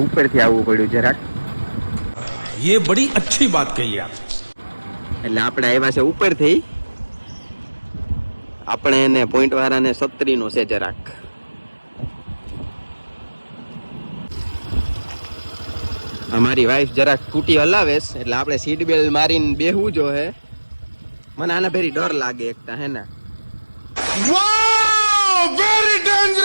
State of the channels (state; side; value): inverted; both; correlation -1.00